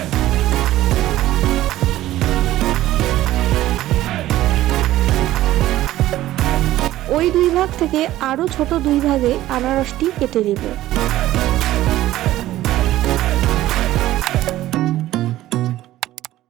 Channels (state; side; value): quieter; left; 14.9 dB